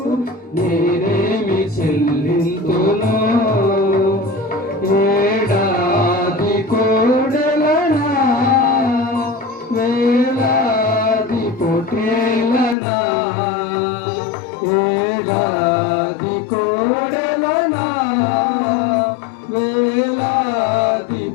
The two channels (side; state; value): right; drops out; at 12.8 s